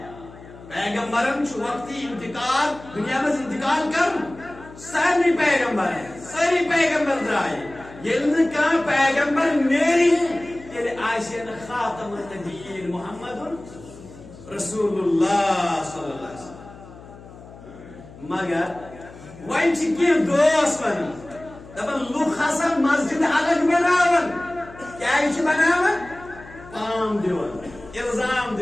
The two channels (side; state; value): left; noise; hum, 19 dB below the sound